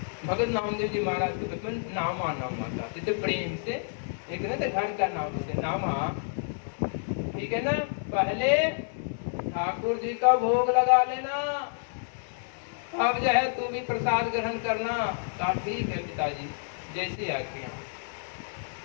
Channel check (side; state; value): right; silent; digital silence